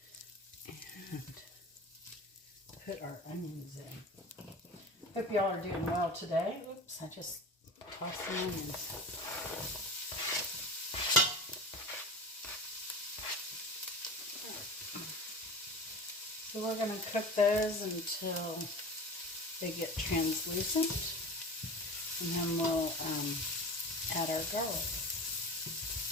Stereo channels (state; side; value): normal; both; correlation 0.31